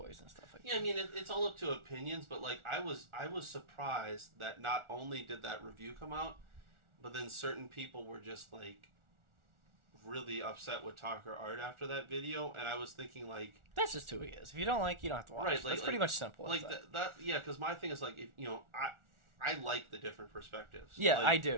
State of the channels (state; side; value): late; left; 1.4 ms